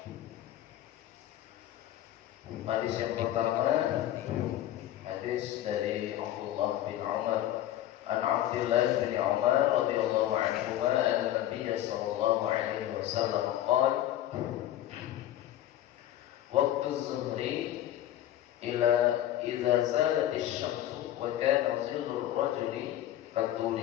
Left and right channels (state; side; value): quieter; right; 12.9 dB